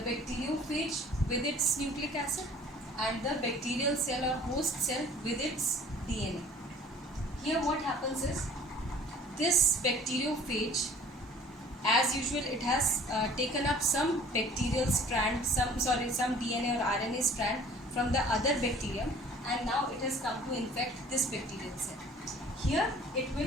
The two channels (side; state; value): both; normal; correlation 0.50